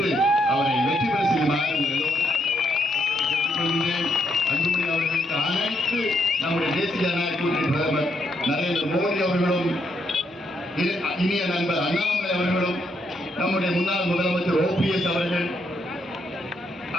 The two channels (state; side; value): normal; both; correlation 0.76